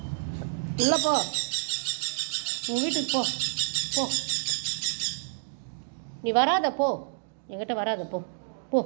உள்ள போ. உன் வீட்டுக்கு போ போ. நீ வராத போ. என்கிட்ட வராத போ போ.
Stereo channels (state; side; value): silent; left; digital silence